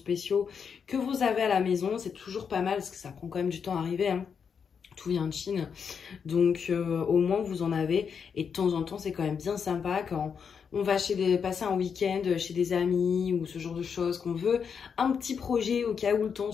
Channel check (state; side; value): quieter; right; 6.6 dB